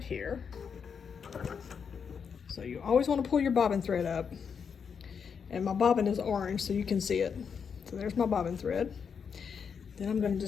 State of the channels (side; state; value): right; quieter; 6.6 dB